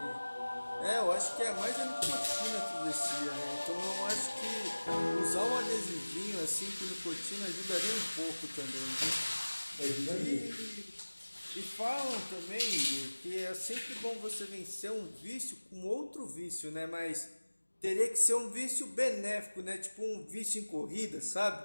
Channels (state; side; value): inverted; both; correlation -1.00